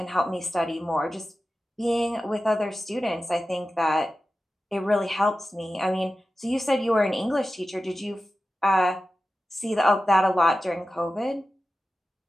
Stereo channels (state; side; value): normal; both; correlation 0.94